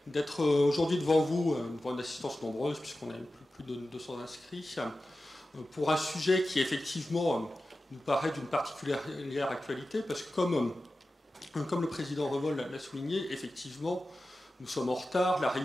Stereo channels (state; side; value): normal; both; correlation 0.94